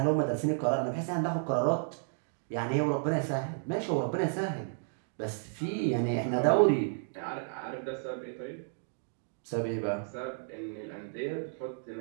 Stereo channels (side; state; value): left; silent; digital silence